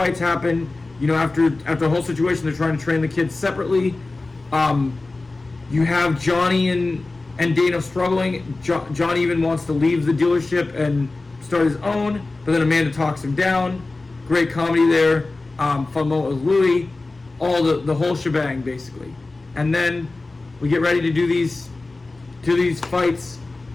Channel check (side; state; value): right; quieter; 3.3 dB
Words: happen. You know, after the whole situation, they're trying to train the kids separately. You have Johnny and Dana struggling. Johnny even wants to leave the dealership and start his own, but then Amanda talks him down. Great comedy there. Fun moment with Louie. All the whole shebang, basically. And then we get ready to do these fights.